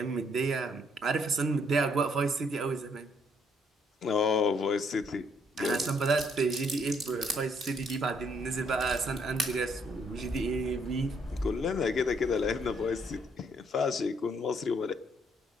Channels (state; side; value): normal; both; correlation 0.69